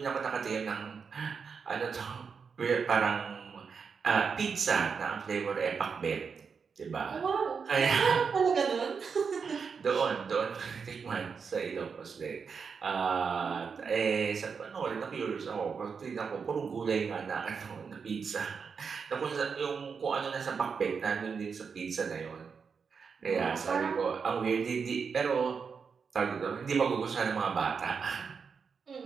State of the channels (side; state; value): left; quieter; 5.8 dB